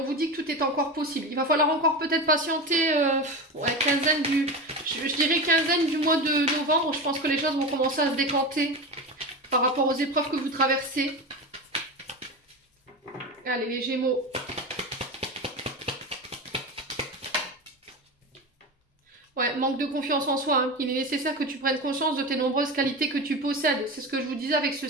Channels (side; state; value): both; normal; correlation 0.23